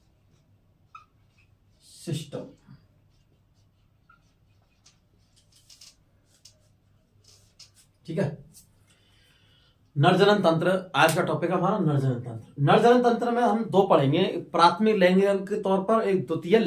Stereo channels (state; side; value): identical; both; correlation 1.00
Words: सिस्टम। ठीक है, नरजनन तंत्र आज का टॉपिक है हमारा। नरजनन तंत्र। नरजनन तंत्र में हम दो पढ़ेंगे, प्राथमिक लैंगिक अंग के तौर पर, एक द्वितीय